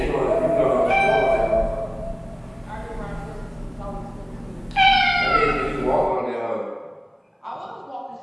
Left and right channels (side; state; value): both; identical; correlation 1.00